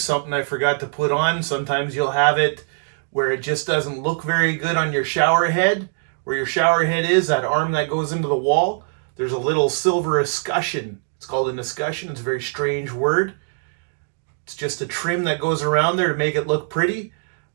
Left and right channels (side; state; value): left; silent; digital silence